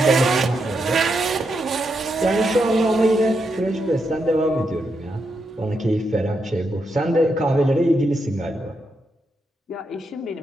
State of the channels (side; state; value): both; normal; correlation 0.83